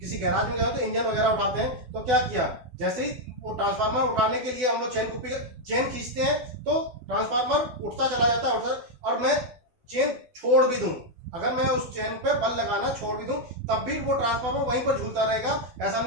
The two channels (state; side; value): late; left; 12 ms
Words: गैराज में गए तो इंजन वगैरह उठाते हैं, तो क्या किया, जैसे ही वो ट्रांसफार्मर उठाने के लिए हम लोग चेन कुप्पी चेन खींचते हैं, तो ट्रांसफार्मर उठता चला जाता है, और मैं चेन छोड़ भी दूं, अगर मैं उस चेन पे बल लगाना छोड़ भी दूं, तब भी वो ट्रांसफार्मर वहीं पर झूलता रहेगा। ऐसा